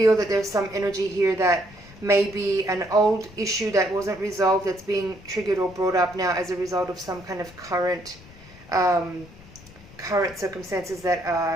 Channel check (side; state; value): left; noise; rumble, 21 dB below the sound